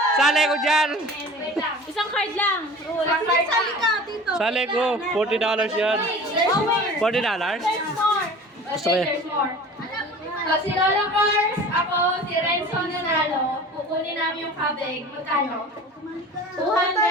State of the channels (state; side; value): normal; both; correlation 0.40